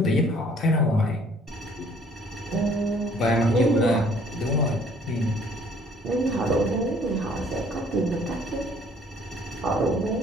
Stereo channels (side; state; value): both; normal; correlation 0.58